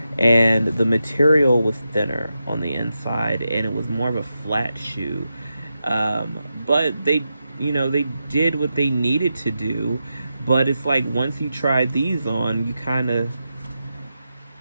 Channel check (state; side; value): inverted; both; correlation -0.88